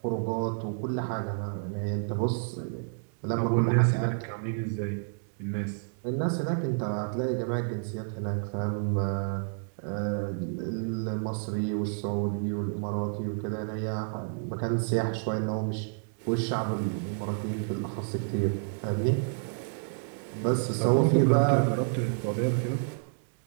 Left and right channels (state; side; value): silent; left; digital silence